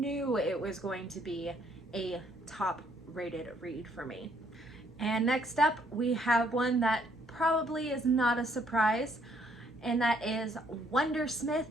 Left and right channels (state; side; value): normal; both; correlation 0.68